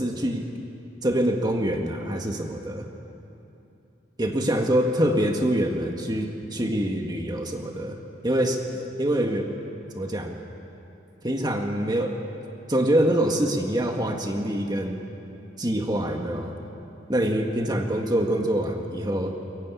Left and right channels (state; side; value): normal; both; correlation 0.74